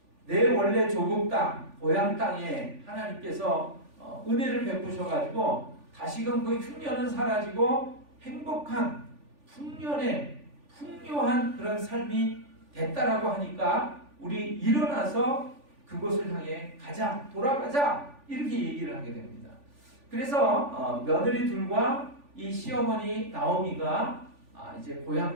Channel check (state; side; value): late; left; 3.5 ms